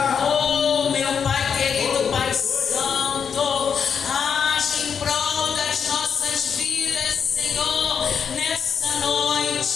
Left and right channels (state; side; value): quieter; right; 6.9 dB